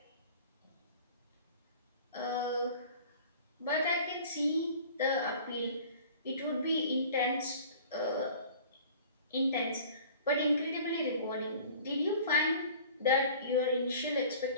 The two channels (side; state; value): both; inverted; correlation -0.45